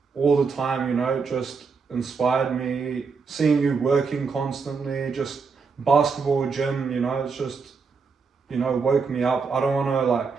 all the time, you know, just inspired me. Seeing you working constantly, just basketball, gym, you know, it's just, you know, woke me up. I don't want to like,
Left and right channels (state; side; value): quieter; left; 5.1 dB